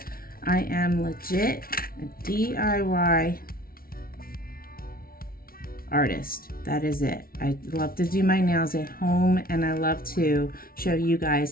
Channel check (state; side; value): late; right; 0.43 ms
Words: I am legit a DIY artist. That is it. I love to do my nails at home, and I love to show you guys